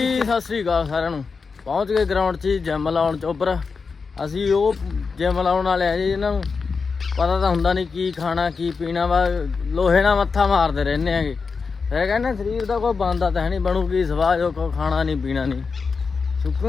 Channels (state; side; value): quieter; right; 4.9 dB